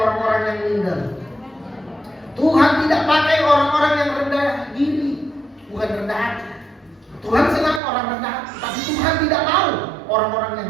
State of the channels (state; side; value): drops out; left; at 7.8 s